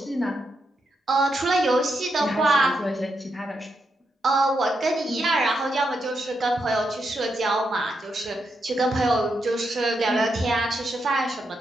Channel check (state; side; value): normal; both; correlation 0.82